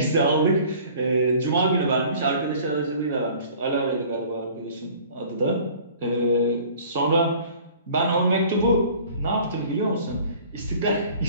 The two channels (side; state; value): both; inverted; correlation -0.49